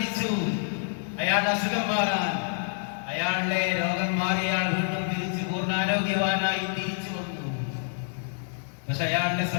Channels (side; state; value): right; silent; digital silence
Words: അയാളുടെ അസുഖം മാറാൻ. അയാളുടെ രോഗം മാറി അയാൾ വീണ്ടും തിരിച്ചു പൂർണ്ണാരോഗ്യവാനായി തിരിച്ചു വന്നു. പക്ഷെ അയാളുടെ